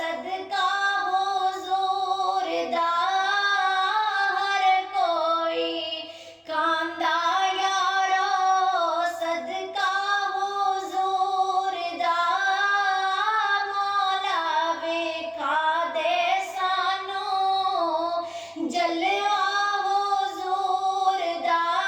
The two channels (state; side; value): identical; both; correlation 1.00